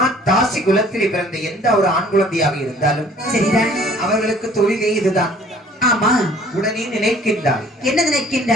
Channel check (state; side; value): normal; both; correlation 0.54